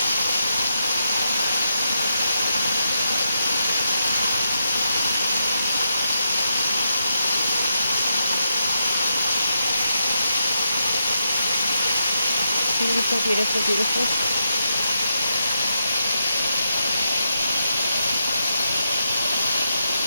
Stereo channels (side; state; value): both; inverted; correlation -0.82